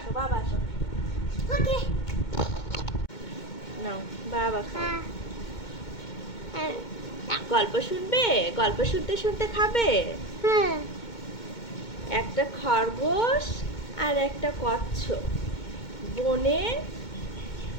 বাবা, আসো। Okay. নাও বাবা খাও। হ্যাঁ। গল্প শুনবে? গল্প শুনতে শুনতে খাবে। একটা খরগোশ আর একটা কচ্ছপ বনে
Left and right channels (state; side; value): late; right; 2.2 ms